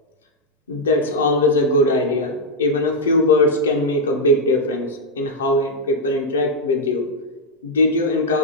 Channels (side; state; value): both; normal; correlation -0.01